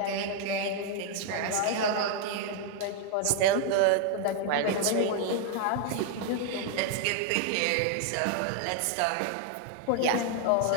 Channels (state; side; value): different; both; correlation 0.00